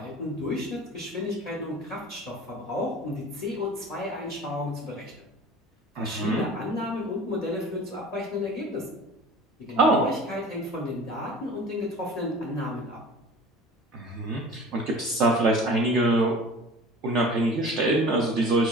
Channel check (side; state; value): both; normal; correlation 0.41